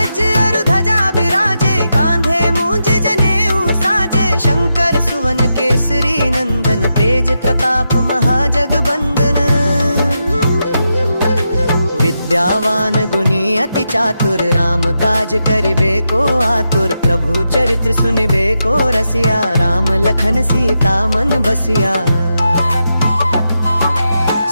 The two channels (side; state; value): both; inverted; correlation -0.86